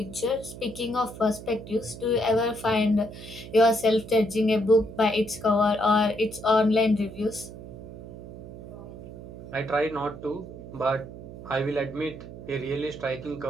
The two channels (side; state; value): right; noise; hum, 13 dB below the sound